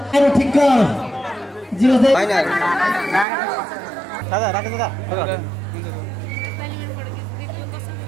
अरु ठिक्क जिउँदै दादा राख दादा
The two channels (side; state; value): left; drops out; at 3.2 s